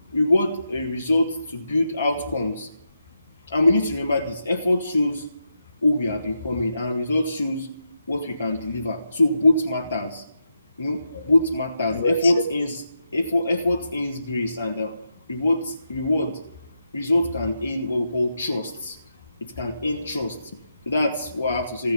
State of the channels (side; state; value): both; inverted; correlation -0.85